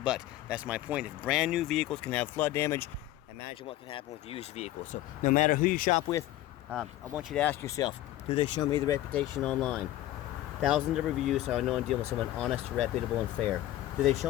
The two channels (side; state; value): right; quieter; 14.5 dB